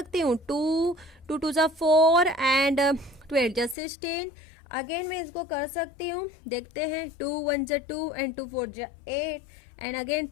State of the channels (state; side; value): drops out; right; at 3.8 s